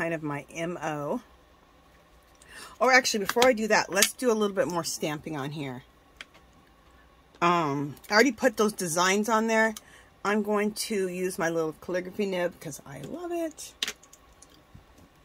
of my MO. Or actually, before I do that, let's do a little bit more stamping on here. I already put those designs on there. I'm going to use my little calligraphy nib because I love it.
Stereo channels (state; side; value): identical; both; correlation 1.00